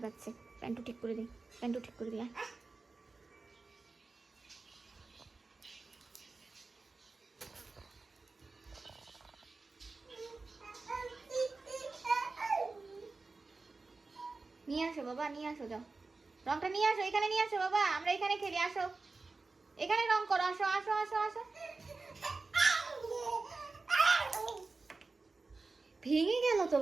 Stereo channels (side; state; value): left; quieter; 3.8 dB